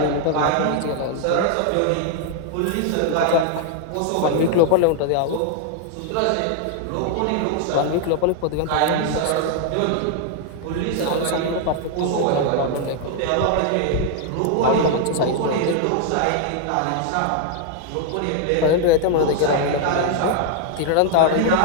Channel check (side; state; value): both; different; correlation 0.00